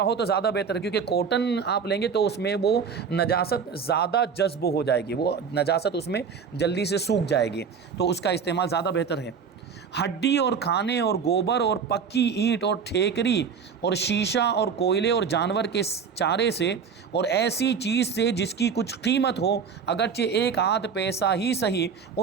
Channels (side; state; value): left; quieter; 6.3 dB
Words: ہو تو زیادہ بہتر ہے، کیونکہ کاٹن آپ لیں گے تو اس میں وہ نجاست زیادہ جذب ہو جائے گی، وہ نجاست اس میں جلدی سے سوکھ جائے گی، تو اس کا استعمال زیادہ بہتر ہے۔ ہڈی اور کھانے اور گوبر اور پکی اینٹ اور ٹھیکری اور شیشہ اور کوئلے اور جانور کے چارے سے اور ایسی چیز سے جس کی کچھ قیمت ہو، اگرچہ 1 آدھ پیسہ ہی صحیح،